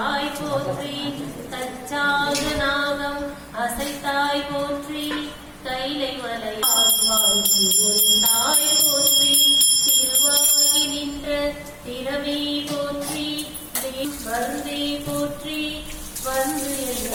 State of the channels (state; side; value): identical; both; correlation 1.00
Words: போற்றி தச்சாக நாகம் அசைத்தாய் போற்றி கைலை மலையாய் போற்றி திருவாகி நின்ற திறமே போற்றி மருந்தே போற்றி வந்து